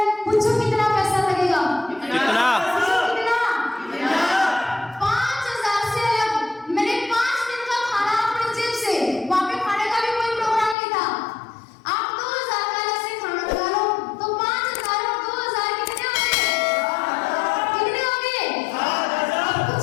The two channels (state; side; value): drops out; right; at 10.8 s